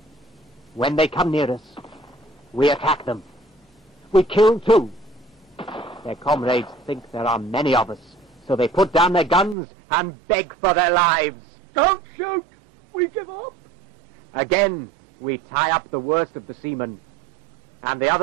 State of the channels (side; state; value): left; drops out; at 9.6 s